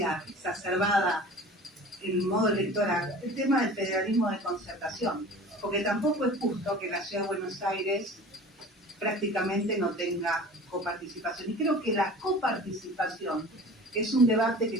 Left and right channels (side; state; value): both; normal; correlation 0.41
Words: exacerbada en modo electoral, el tema del federalismo de concertación, porque tampoco es justo que la Ciudad de Buenos Aires prácticamente no tenga coparticipación. Y creo que la coparticipación es un debate que